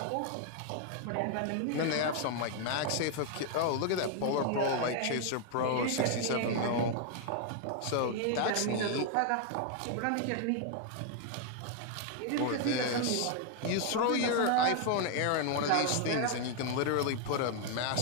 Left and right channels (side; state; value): both; different; correlation 0.00